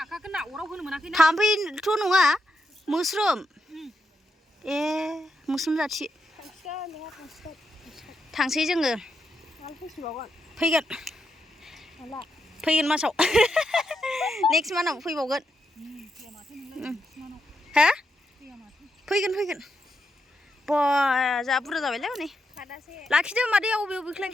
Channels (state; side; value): normal; both; correlation 0.83